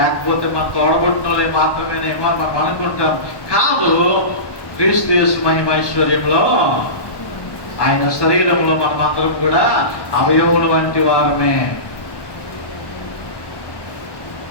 మన తోడబుట్టినోళ్ళే మాత్రమేనేమో అని మనం అనుకుంటాం. కాదు, క్రీస్తు యేసు మహిమైశ్వర్యంలో ఆయన శరీరంలో మనమందరం కూడా అవయవుల వంటి వారమే.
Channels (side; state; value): right; late; 1.1 ms